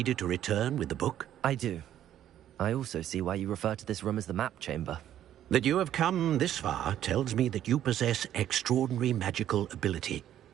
to return with the book? I do. I also see why you refer to this room as the Map Chamber. That you have come this far tells me that you possess extraordinary magical ability,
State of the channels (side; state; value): left; quieter; 11.3 dB